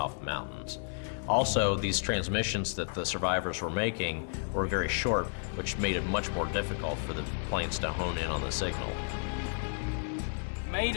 the mountains. Also, these transmissions that the survivors were making were very short, which made it much more difficult for the planes to hone in on the signal.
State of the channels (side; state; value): right; silent; digital silence